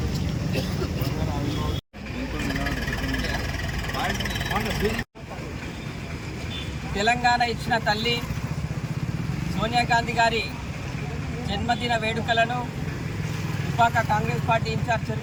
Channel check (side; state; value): both; identical; correlation 1.00